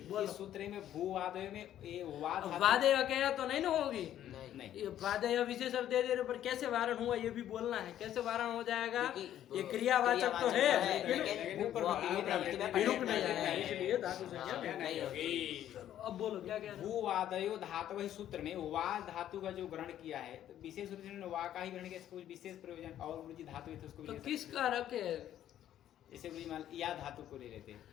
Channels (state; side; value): quieter; right; 11.5 dB